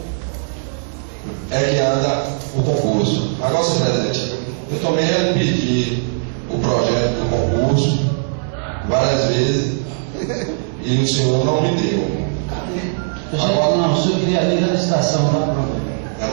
é que anda o concurso. Agora, senhor presidente, eu também pedi o projeto do concurso várias vezes e o senhor não me deu. Agora, não, o senhor queria ler a licitação, tá pronto. Já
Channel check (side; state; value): left; silent; 63 dB below the other